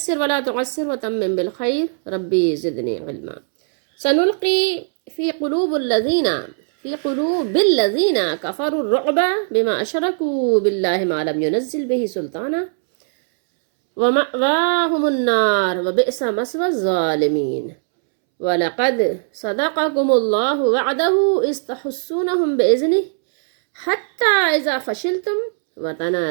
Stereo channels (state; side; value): silent; left; 66 dB below the other